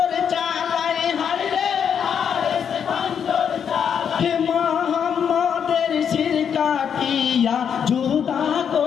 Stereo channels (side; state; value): right; quieter; 7.7 dB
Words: চালায়, হাইরে হারেস খঞ্জর চালায়। মোহাম্মদের শির কাটিয়া জুদা